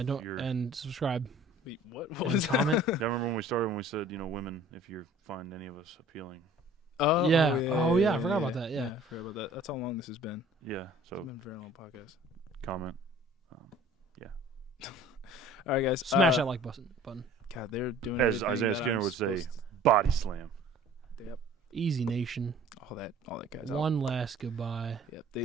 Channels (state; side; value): normal; both; correlation 0.49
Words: And subscribe. Wait, what And was comment. I remember when we started when we said, women, if you find any of us appealing. Oh Yeah. Oh, yeah, I forgot about that, yeah. I forgot about that. That's how long this has been. Yeah, so It's been a very long podcast. comment. All right, guys. Smash that like button. God, they're doing As everything Isaiah that Skinner I'm would say, supposed body slam. to- Yep. Easy Nation. All that, guys. One last goodbye. Yep.